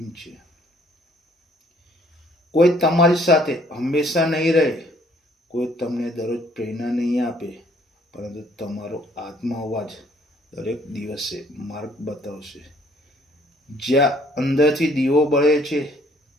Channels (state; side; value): normal; both; correlation 0.62